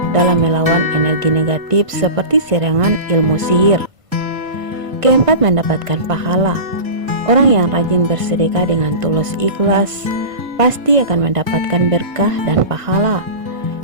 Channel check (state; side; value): late; left; 1.5 ms